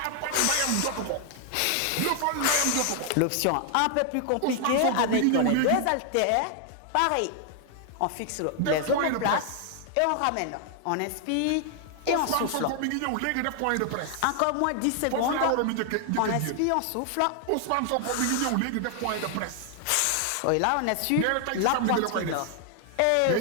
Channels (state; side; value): different; both; correlation 0.00